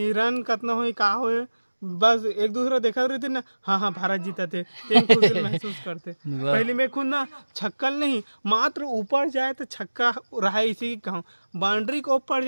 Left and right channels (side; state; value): both; inverted; correlation -1.00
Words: रन कितना हो का हो बस एक दूसरा देखा रहे थे ना हाँ भारत जीता थे खुशी महसूस करते पहले में खुद ना छक्कल नहीं मात्र ऊपर जाए तो छक्का रहा इसी की कहूँ बाउंड्री को ऊपर